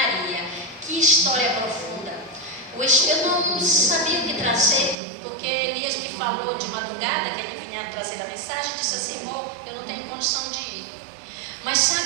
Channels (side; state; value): left; drops out; at 5.0 s